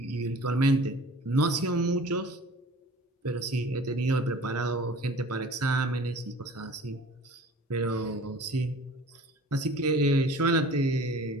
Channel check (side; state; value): both; normal; correlation 0.45